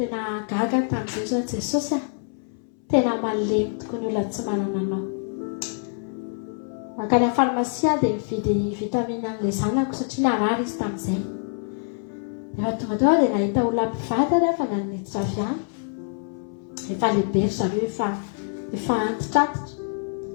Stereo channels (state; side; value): silent; right; 62 dB below the other